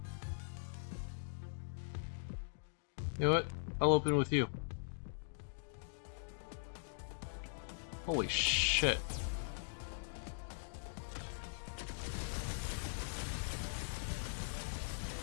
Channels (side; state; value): right; silent; digital silence